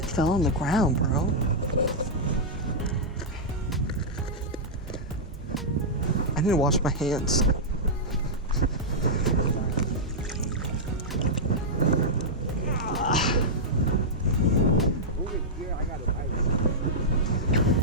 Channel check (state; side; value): normal; both; correlation -0.09